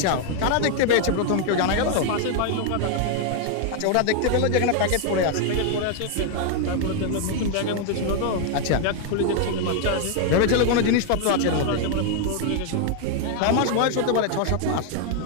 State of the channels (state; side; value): different; both; correlation 0.00